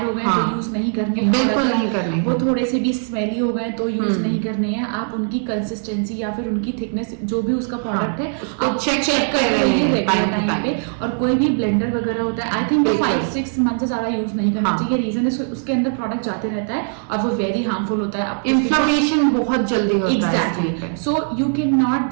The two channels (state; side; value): silent; left; digital silence